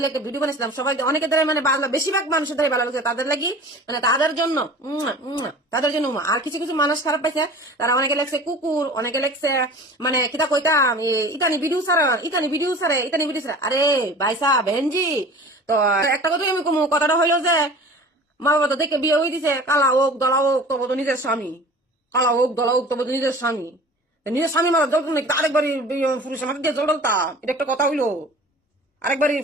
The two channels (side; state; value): both; normal; correlation 0.42